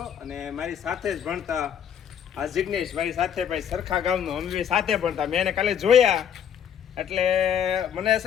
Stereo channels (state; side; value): quieter; right; 8.7 dB